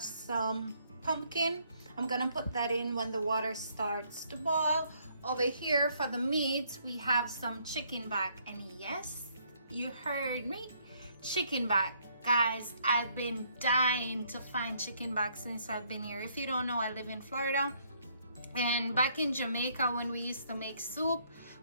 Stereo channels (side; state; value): both; inverted; correlation -0.68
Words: some pumpkin. I'm gonna put that in when the water starts to boil. Over here for the meat, we have some chicken back, and yes, you heard me, chicken back. Guys, I've been dying to find chicken back since I've been here. If you don't know, I live in Florida, and back in Jamaica when we used to make soup,